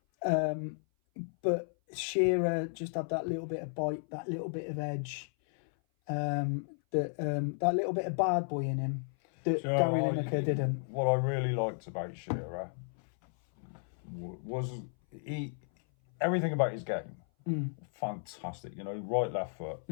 But Shearer just had that little bit of bite, that little bit of edge, that little bit of bad boy in him that Gary Lineker didn't. What I really liked about Shearer was everything about his game. Fantastic, right, left foot,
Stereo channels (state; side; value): silent; right; 55 dB below the other